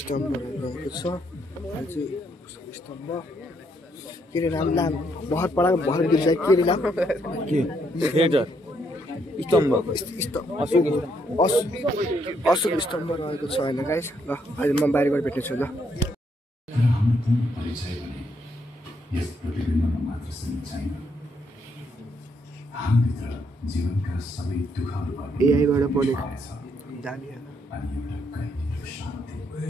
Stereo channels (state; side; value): normal; both; correlation 0.74